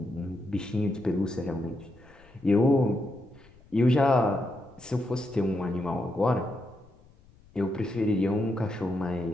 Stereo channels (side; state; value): left; noise; rumble, 27 dB below the sound